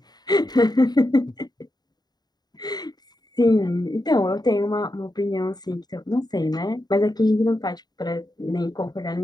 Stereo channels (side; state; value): right; late; 0.20 ms